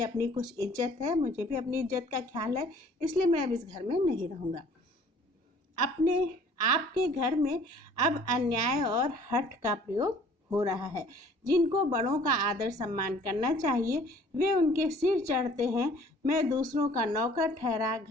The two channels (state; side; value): normal; both; correlation 0.54